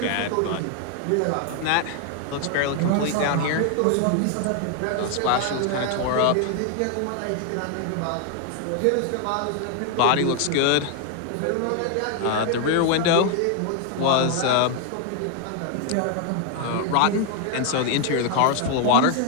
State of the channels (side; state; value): both; different; correlation 0.00